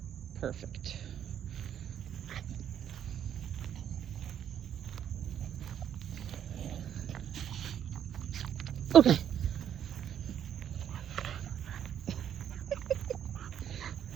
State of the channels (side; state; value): left; quieter; 9.5 dB